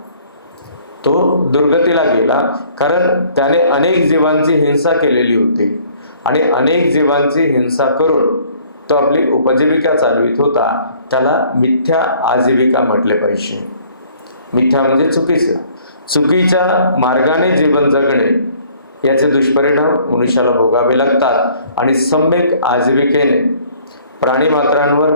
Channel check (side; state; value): both; inverted; correlation -0.58